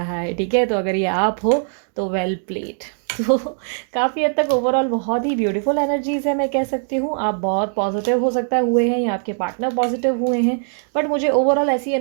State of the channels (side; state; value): left; silent; digital silence